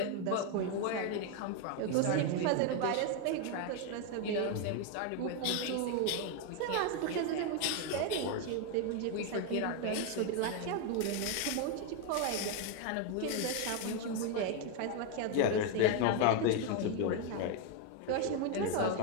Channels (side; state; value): both; different; correlation 0.01